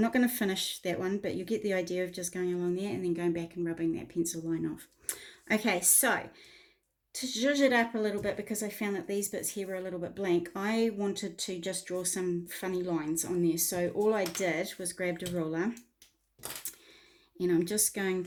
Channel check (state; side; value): identical; both; correlation 1.00